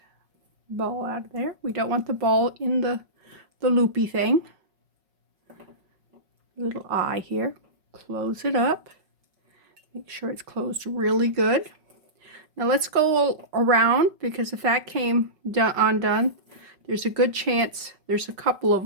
ball out of there. We don't want the ball in the loopy thing. Little eye here. Close it up. Make sure it's closed really good. Now let's go around, because if that came undone, there's a good chance there's a couple of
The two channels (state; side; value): late; left; 5.4 ms